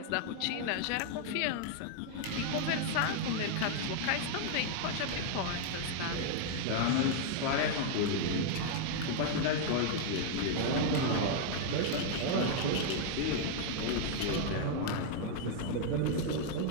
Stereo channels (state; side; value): different; both; correlation 0.00